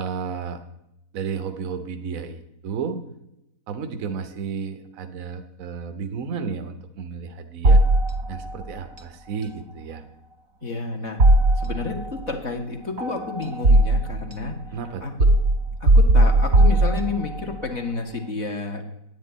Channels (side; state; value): left; late; 4.0 ms